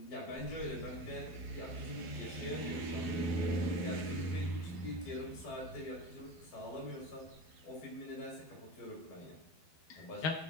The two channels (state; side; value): late; right; 12 ms